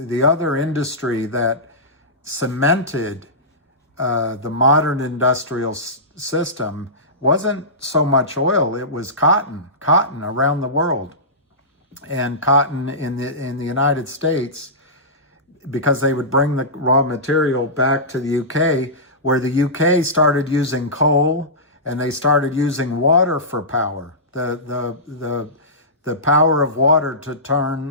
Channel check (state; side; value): normal; both; correlation -0.18